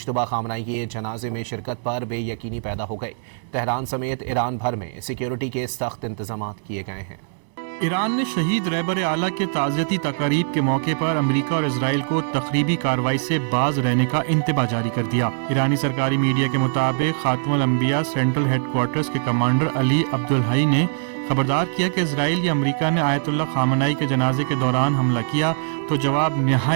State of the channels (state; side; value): silent; left; digital silence